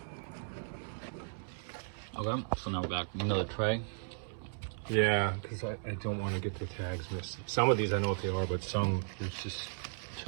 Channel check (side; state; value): left; silent; digital silence